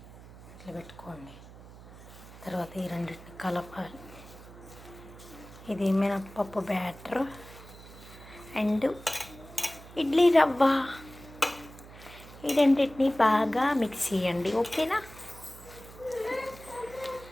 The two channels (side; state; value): right; noise; hum, 18 dB below the sound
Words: ఇట్లా పెట్టుకోండి. తర్వాత ఈ రెండింటిని కలపాలి. ఇది మినప్పప్పు బ్యాటర్ అండ్ ఇడ్లీ రవ్వ, ఈ రెండింటిని బాగా మిక్స్ చేయండి. ఓకేనా